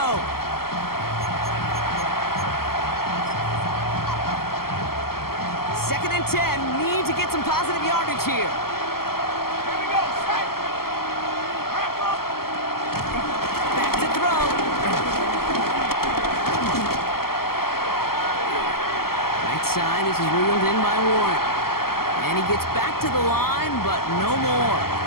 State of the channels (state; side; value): late; right; 0.94 ms